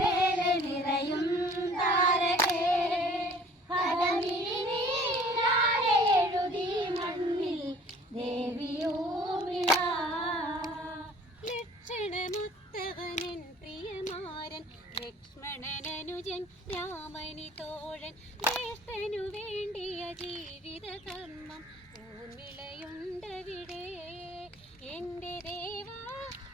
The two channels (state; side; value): normal; both; correlation 0.52